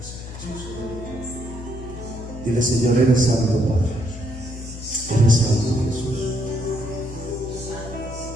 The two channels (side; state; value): left; noise; hum, 12 dB below the sound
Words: Dile, Señor, eres santo, Padre. Eres santo, Jesús.